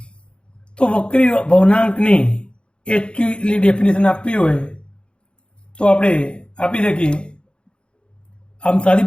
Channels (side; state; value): right; late; 0.055 ms